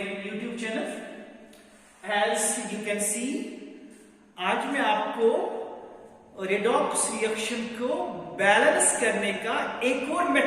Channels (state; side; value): identical; both; correlation 1.00